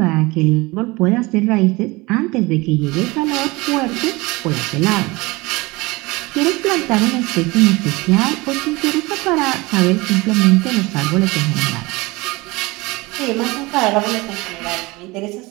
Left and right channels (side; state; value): left; quieter; 23.1 dB